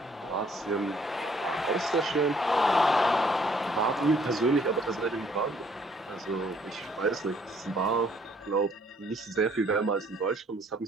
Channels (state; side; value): normal; both; correlation 0.63